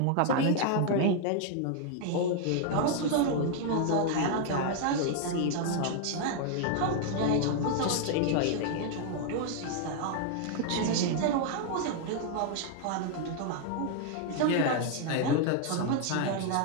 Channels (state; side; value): different; both; correlation 0.00